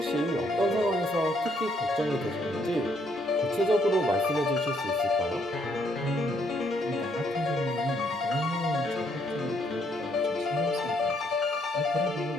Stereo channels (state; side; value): normal; both; correlation 0.70